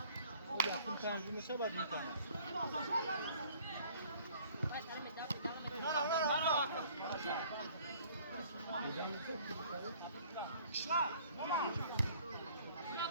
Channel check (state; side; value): inverted; both; correlation -0.55